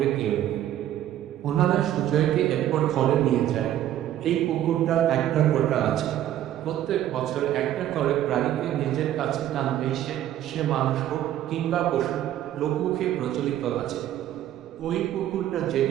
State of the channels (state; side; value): quieter; left; 12.2 dB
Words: কেউ নেই। ওনারা সুজয়কে এরপর ঘরে নিয়ে যায়। এই পুকুরটার একটা কোটা আছে। প্রত্যেক বছর একটা করে প্রাণীকে নিজের কাছে টানবে সে মানুষ হোক কিংবা পশু। লোকমুখে প্রচলিত আছে ওই পুকুরটা